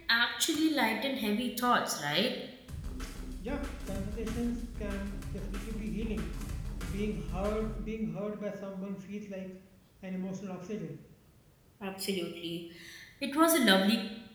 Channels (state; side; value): identical; both; correlation 1.00